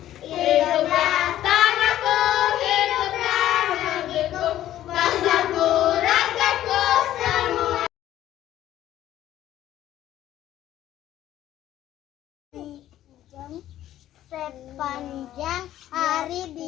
Hiduplah tanahku, hiduplah negeriku, bangsaku, rakyatku semua. Sepanjang hari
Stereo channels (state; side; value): quieter; right; 12.8 dB